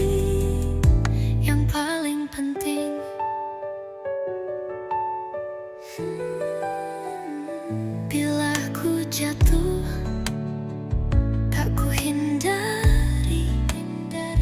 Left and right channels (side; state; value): both; identical; correlation 1.00